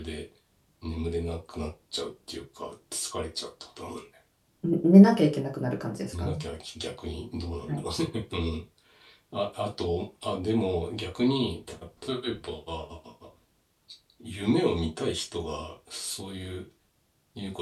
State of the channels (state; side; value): identical; both; correlation 1.00